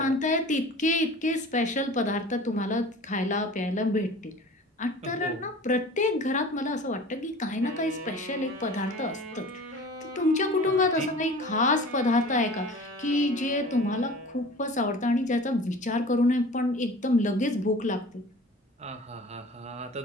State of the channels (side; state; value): both; normal; correlation 0.41